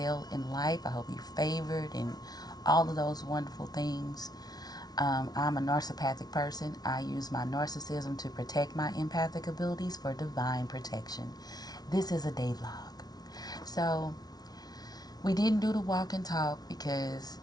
in life. I hope you're favored and all of those wonderful things. I'm a narcissistic person. I use my narcissism to protect my empathic abilities for divine protection. This is a day vlog. So, we didn't do the walk and talk because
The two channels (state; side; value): late; right; 0.19 ms